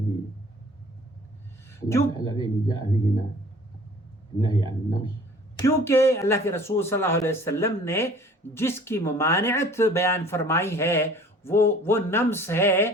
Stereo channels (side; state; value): both; normal; correlation 0.50